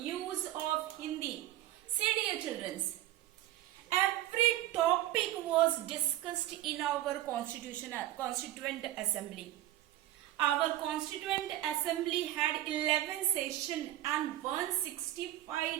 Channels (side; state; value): left; quieter; 14.2 dB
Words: of Hindi. See dear children, every topic was discussed in our Constituent Assembly. Our Constituent Assembly had 11 sessions and